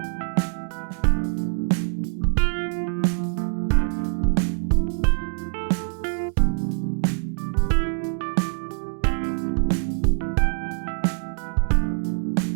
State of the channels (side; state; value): left; silent; 57 dB below the other